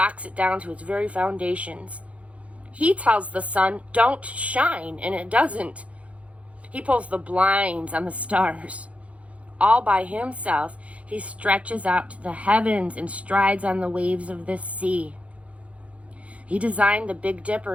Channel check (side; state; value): left; late; 0.064 ms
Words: it down to its very foundations. He tells the sun, don't shine, and it doesn't. He pulls the blinds on the stars. All by himself, he stretches out to the heavens and strides on the waves of this sea. He designed the Big